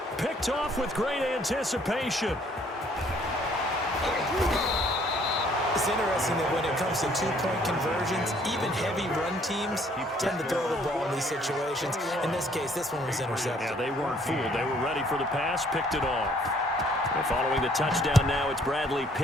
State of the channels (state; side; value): normal; both; correlation 0.62